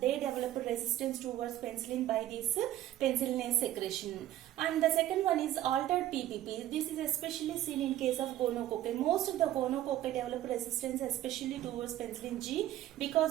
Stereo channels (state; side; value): quieter; left; 13.4 dB